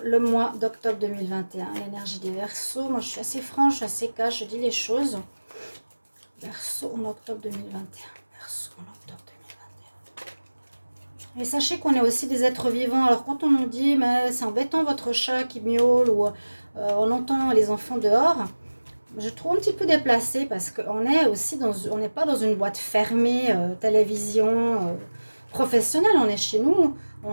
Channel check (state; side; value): inverted; both; correlation -1.00